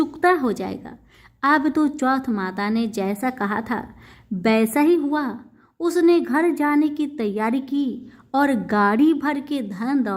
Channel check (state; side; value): identical; both; correlation 1.00